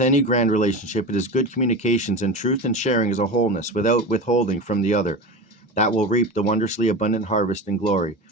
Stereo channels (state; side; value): normal; both; correlation 0.26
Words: any grand relationship, it is good communications and truth and sharing as a wholeness, without withholding from the other, that will reap the wondrously abundant harvest and glory.